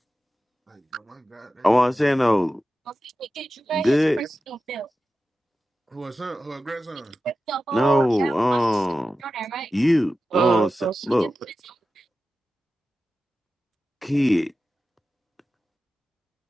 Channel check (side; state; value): both; normal; correlation 0.93